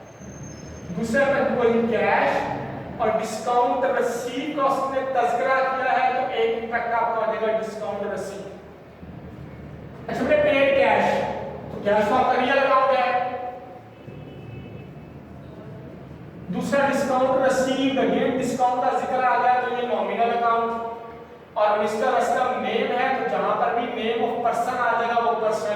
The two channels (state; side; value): identical; both; correlation 1.00